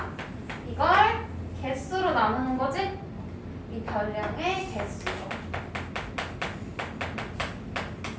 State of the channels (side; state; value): both; identical; correlation 1.00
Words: 이걸 개수로 나누는 거지? 이 별량의 개수로.